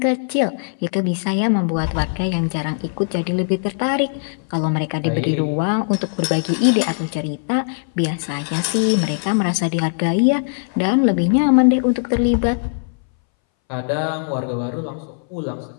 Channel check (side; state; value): right; silent; 63 dB below the other